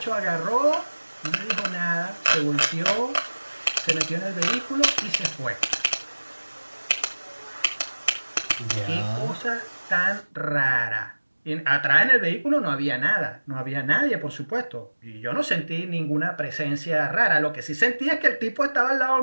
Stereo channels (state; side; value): inverted; both; correlation -1.00